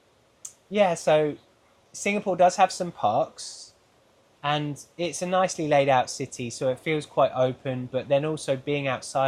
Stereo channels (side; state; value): both; identical; correlation 1.00